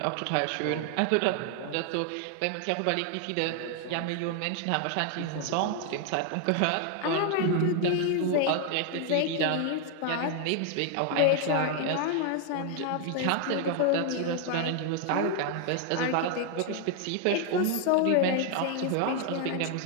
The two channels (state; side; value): different; both; correlation 0.00